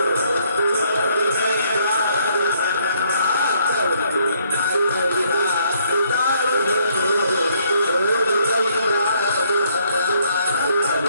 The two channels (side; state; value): both; inverted; correlation -0.68